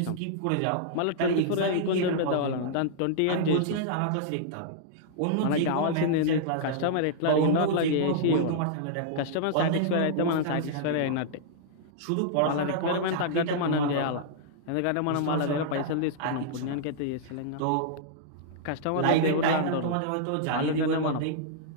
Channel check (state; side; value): different; both; correlation -0.02